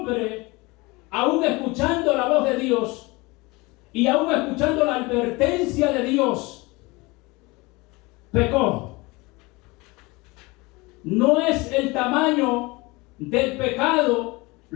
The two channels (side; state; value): right; quieter; 24.0 dB